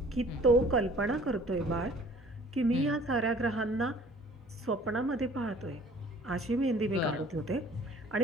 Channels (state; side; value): normal; both; correlation 0.52